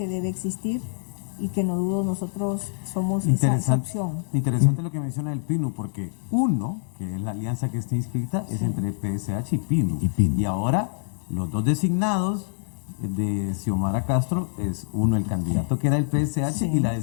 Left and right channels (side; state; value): right; silent; 61 dB below the other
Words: debe existir y que no dudo nosotros somos esa opción. Interesante lo que menciona el PINU, porque uno, que es la alianza que está inscrita, es entre PSH y PINU. Y ahora los dos designados de Xiomara Castro es uno el candidato que era del PSH y la